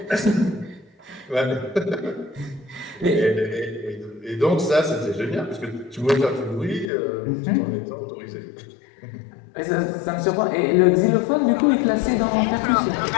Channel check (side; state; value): right; drops out; at 6.9 s